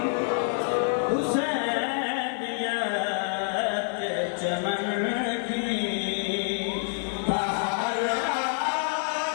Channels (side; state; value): right; silent; 60 dB below the other